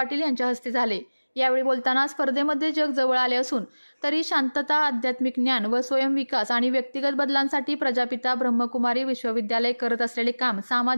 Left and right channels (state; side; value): inverted; both; correlation -1.00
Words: यांच्या हस्ते झाले। यावेळी बोलताना स्पर्धेमध्ये जग जवळ आले असून तरी शांतता आध्यात्मिक ज्ञान व स्वयंविकास आणि व्यक्तिगत बदलांसाठी प्रजापिता ब्रह्मकुमारी विश्वविद्यालय करत असलेले काम